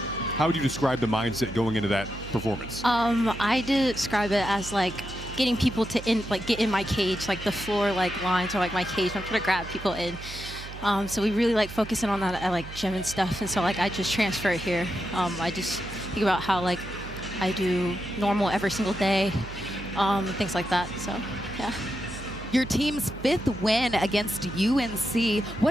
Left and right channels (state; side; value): noise; right; hum, 12 dB below the sound